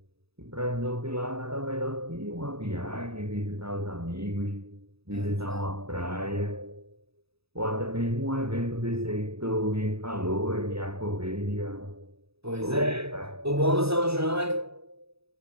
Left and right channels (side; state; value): left; late; 0.78 ms